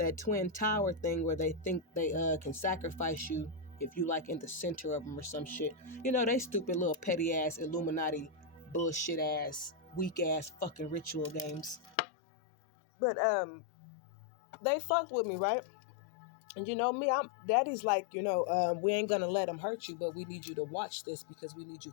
twin tower thing where they think they can sacrifice you if you like in the center of them or some shit. They stupid little petty ass Illuminati bullshit ass weak ass fucking ritual games. But they fucked with me, right? And me, daddy's like, we ain't gonna let them hurt you, but we need you to watch this because we need you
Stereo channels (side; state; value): right; drops out; at 12.0 s